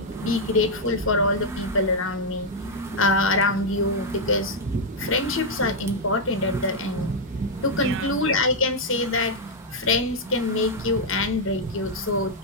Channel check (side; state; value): both; normal; correlation -0.02